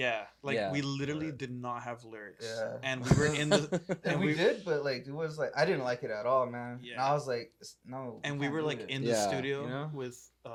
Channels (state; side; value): identical; both; correlation 1.00